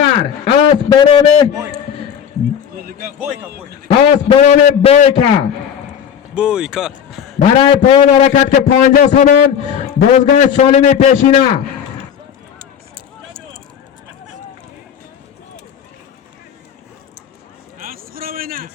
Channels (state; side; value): quieter; right; 8.3 dB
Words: بنام بویکا Boyka. برای پایان حرکت که 50 سامان بازگاه سالم پیشینه